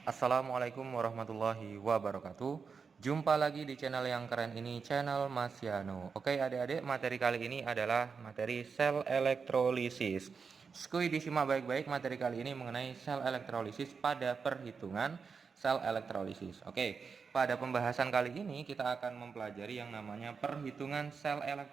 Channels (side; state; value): left; quieter; 5.5 dB